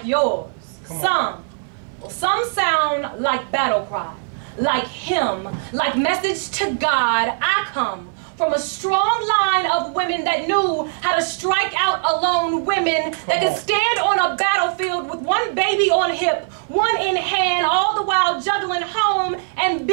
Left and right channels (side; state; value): left; silent; 59 dB below the other